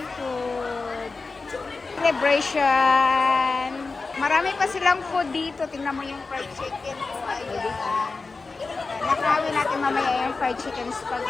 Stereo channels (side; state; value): right; quieter; 4.0 dB